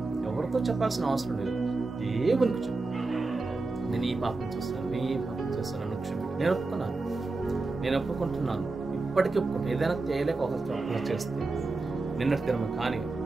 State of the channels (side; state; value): left; quieter; 3.5 dB